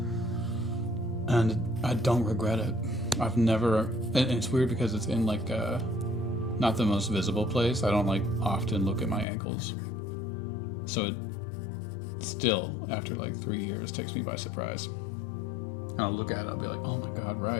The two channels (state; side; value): drops out; right; at 9.2 s